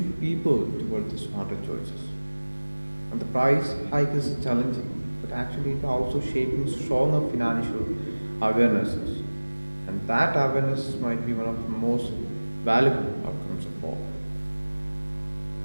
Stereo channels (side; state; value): both; inverted; correlation -1.00